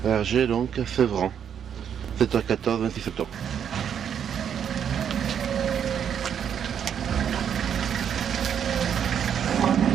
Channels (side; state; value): left; quieter; 8.4 dB